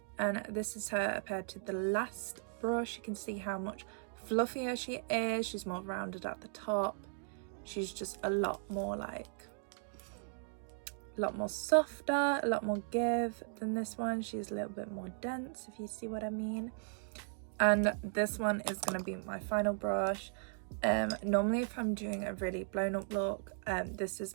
And this is her paired to the last brush. You can see how much fluffier she is. She's more rounded at the top. She's just a lot more like, a lot more softer, a lot more give than this one. She's a little bit more dense, if you see what I mean. And this one is going to be my final brush. Normally if I'm doing a really blown up look, this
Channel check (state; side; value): silent; left; 53 dB below the other